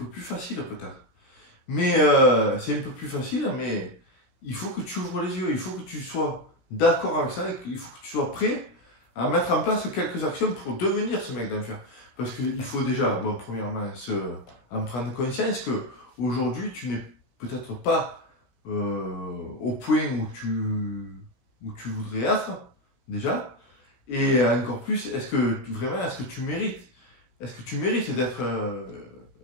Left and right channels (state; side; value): late; right; 17 ms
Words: plus facile peut-être. Mais c'est un peu plus facile, mais il faut que tu ouvres les yeux, il faut que tu sois d'accord avec ça, il faut que tu sois prêt à mettre en place quelques actions pour devenir ce mec d'enfer. Parce qu'il faut déjà, bon, premièrement, en prendre conscience que aujourd'hui tu n'es peut-être pas au point où tu voudrais être, déjà. Et encore plus, est-ce que tu mérites? Est-ce que tu mérites d'être